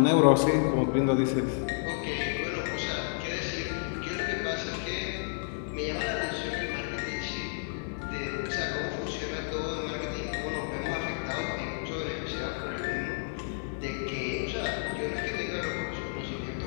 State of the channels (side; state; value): right; silent; digital silence